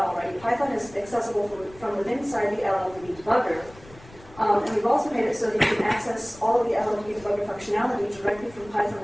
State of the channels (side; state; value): left; noise; rumble, 22 dB below the sound